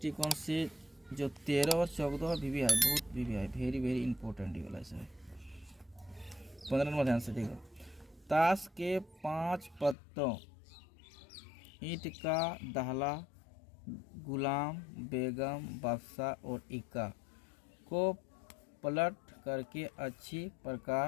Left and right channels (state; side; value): drops out; right; at 10.0 s